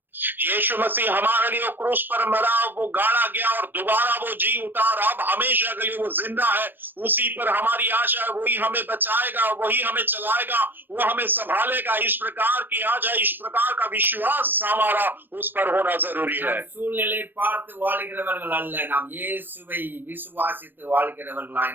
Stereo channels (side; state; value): left; late; 0.094 ms